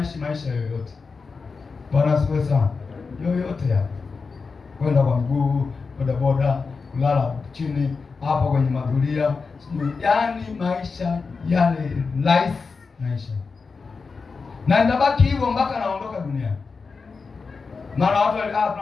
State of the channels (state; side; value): quieter; right; 4.7 dB